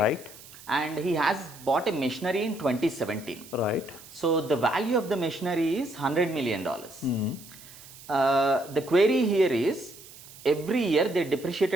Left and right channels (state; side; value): noise; right; hiss, 19 dB below the sound